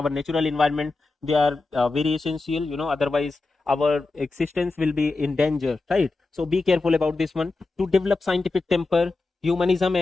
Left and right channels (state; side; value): quieter; right; 3.5 dB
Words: natural environment. They are very essential, you know, otherwise our existence will be in danger, right? So be careful about this one. To develop scientific temper, humanism